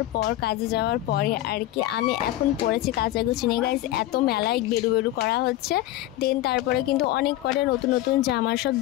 পর, কাজে যাওয়ার পরে আর কি আমি এখন পড়েছি কাচাকুচি নিয়ে। গাইজ এত মেলায় বেরু করা হচ্ছে, দেন তারপরে কিন্তু অনেক কটা নতুন নতুন জামা সব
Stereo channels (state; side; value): quieter; right; 15.0 dB